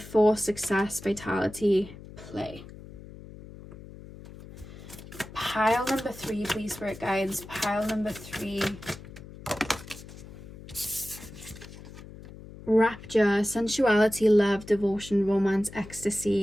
force, success, vitality, play. Pile number 3, please, Spirit Guides. Pile number 3. Rapture, sensuality, love, devotion, romance,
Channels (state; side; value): noise; left; hum, 16 dB below the sound